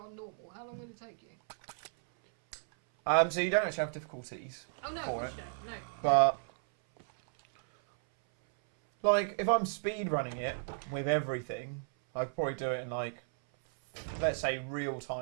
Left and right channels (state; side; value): silent; left; 55 dB below the other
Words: on normal, how long would it take you? So you don't actually have difficulties. Oh no, of course you don't. No. But like, if I'm speed running it with everything, I'd probably do it in like, let's say, real